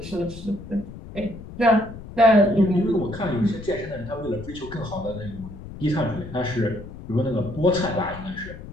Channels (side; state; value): left; noise; rumble, 13 dB below the sound